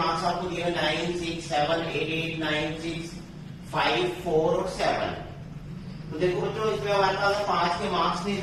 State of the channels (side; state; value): both; identical; correlation 1.00